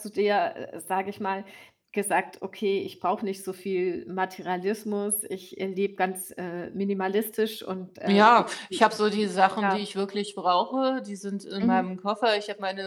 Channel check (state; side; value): identical; both; correlation 1.00